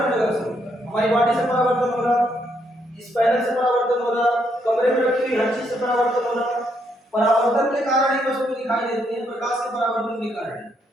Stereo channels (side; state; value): both; normal; correlation 0.75